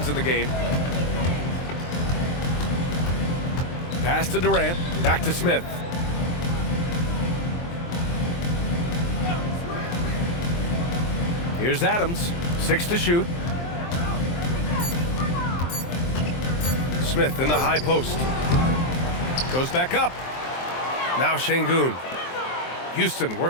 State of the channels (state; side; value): late; right; 23 ms